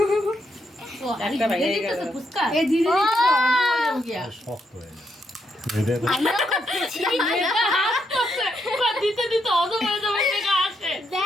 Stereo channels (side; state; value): both; normal; correlation 0.78